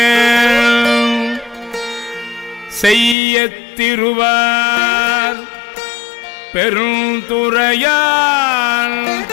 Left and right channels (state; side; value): drops out; right; at 3.2 s